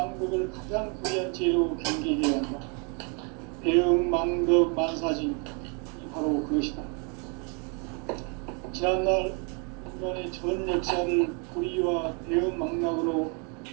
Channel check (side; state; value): left; quieter; 35.6 dB